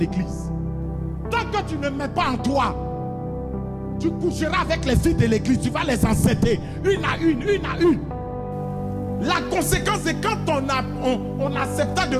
Tant que tu ne mets pas en toi, tu coucheras avec les filles de l'église, tu vas les enceinter, une à une, une à une. La conséquence, c'est quand on accepte de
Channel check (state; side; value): identical; both; correlation 1.00